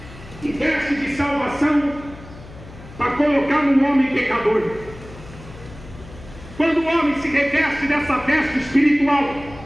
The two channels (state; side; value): noise; left; hum, 17 dB below the sound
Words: e veste de salvação para colocar no homem pecador. Quando o homem se reveste dessa veste espiritual,